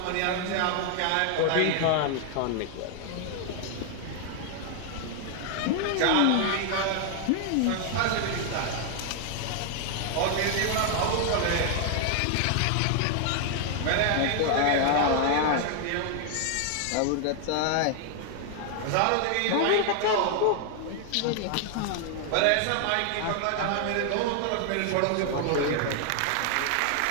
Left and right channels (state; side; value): different; both; correlation 0.00